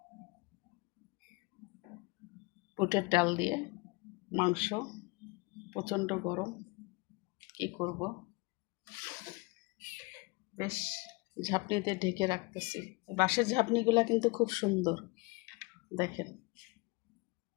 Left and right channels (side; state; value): right; quieter; 26.8 dB